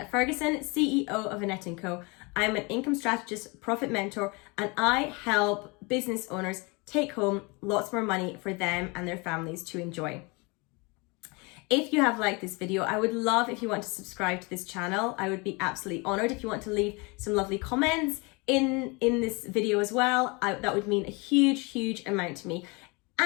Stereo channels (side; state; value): right; quieter; 28.2 dB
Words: Ferguson, CEO of Annette & Co. I'm an income strategist, profit mentor, and I help business owners take home lots more money for them and their families to enjoy. If you have liked this video, I would love if you want to subscribe to this channel. I would be absolutely honored if you want to leave some lovely comments in this video as well. That would mean a huge, huge amount to me.